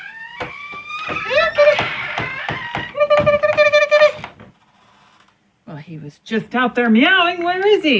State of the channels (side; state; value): both; identical; correlation 1.00